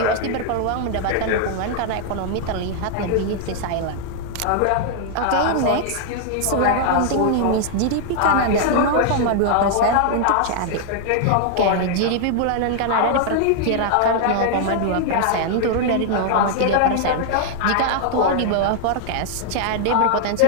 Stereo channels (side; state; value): both; different; correlation 0.00